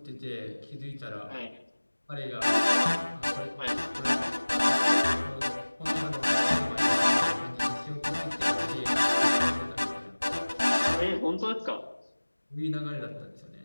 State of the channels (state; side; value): inverted; both; correlation -1.00